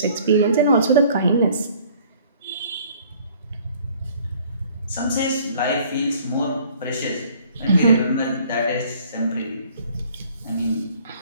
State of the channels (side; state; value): both; inverted; correlation -0.56